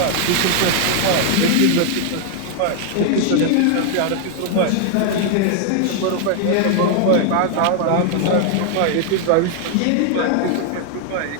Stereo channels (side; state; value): both; different; correlation 0.00